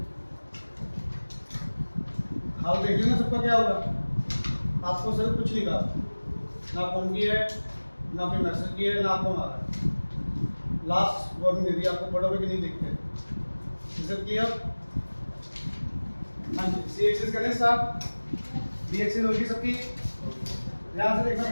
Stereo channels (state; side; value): inverted; both; correlation -1.00